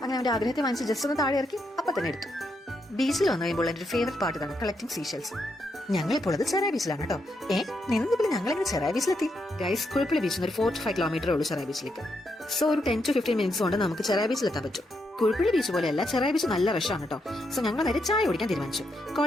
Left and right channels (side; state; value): both; normal; correlation 0.80